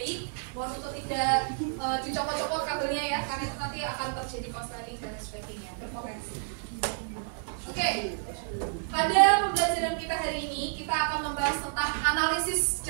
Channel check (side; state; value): left; silent; digital silence